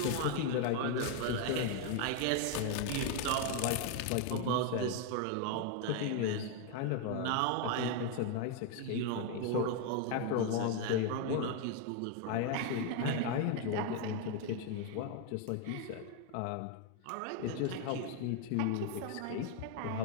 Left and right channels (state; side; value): different; both; correlation 0.01